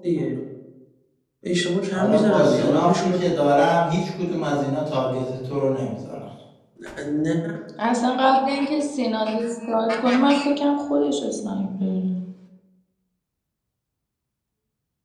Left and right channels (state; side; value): identical; both; correlation 1.00